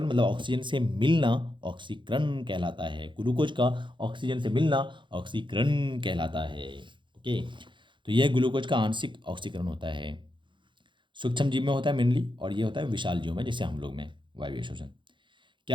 मतलब ऑक्सीजन से मिलना ऑक्सीकरण कहलाता है, ग्लूकोज का ऑक्सीजन से मिलना ऑक्सीकरण कहलाता है, ओके। तो यह ग्लूकोज का आंशिक ऑक्सीकरण होता है, सूक्ष्म जीव में होता है मेनली, और ये होता है विशाल जीव में, जैसे हम लोग में वायवीय श्वसन।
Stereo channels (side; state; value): left; late; 0.23 ms